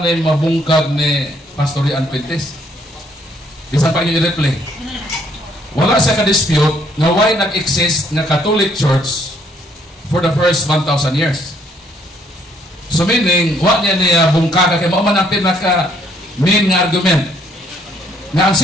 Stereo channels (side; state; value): both; normal; correlation 0.67